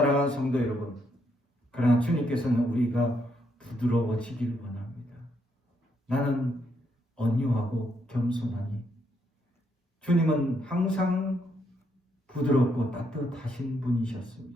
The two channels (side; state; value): both; normal; correlation 0.76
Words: 성도 여러분, 그러나 주님께서는 우리가 부드러워지길 원합니다. 나는 온유하고 겸손하니 주님은 항상 부드럽고 따뜻하신